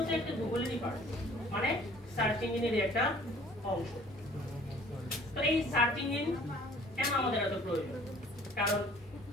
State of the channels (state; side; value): normal; both; correlation 0.53